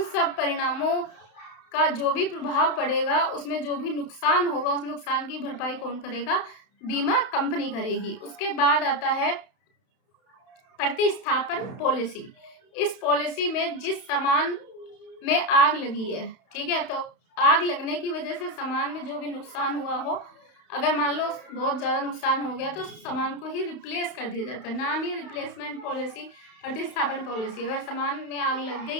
सब परिणामों का जो भी प्रभाव पड़ेगा, उसमें जो भी नुकसान होगा, उस नुकसान की भरपाई कौन करेगा, बीमा कंपनी करेगी। उसके बाद आता है प्रतिस्थापन पॉलिसी। इस पॉलिसी में जिस सामान में आग लगी है, ठीक है, तो आग लगने की वजह से सामान में जो भी नुकसान हुआ हो, अगर मान लो बहुत ज़्यादा नुकसान हो गया तो सामान को ही रिप्लेस कर दिया जाता है। नाम ही रिप्लेसमेंट पॉलिसी, प्रतिस्थापन पॉलिसी। अगर सामान में आग लग गई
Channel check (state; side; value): late; right; 31 ms